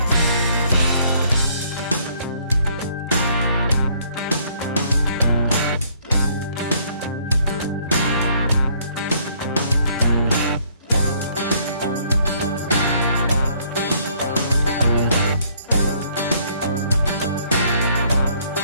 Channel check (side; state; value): both; inverted; correlation -0.64